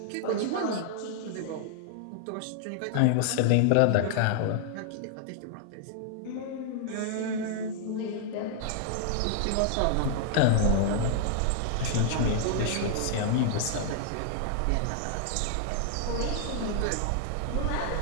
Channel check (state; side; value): different; both; correlation 0.00